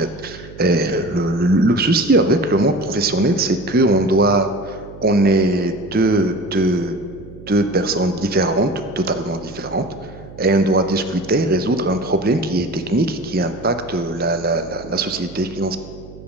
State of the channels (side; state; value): right; noise; hum, 17 dB below the sound